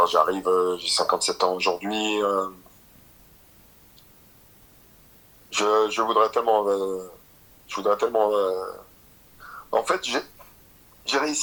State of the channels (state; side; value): identical; both; correlation 1.00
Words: j'ai 57 ans aujourd'hui. Je voudrais tellement. Je voudrais tellement. En fait, j'ai